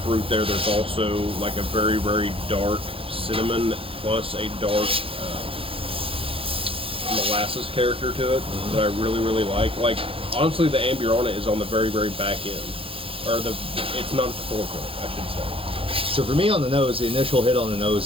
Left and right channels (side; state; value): left; late; 0.27 ms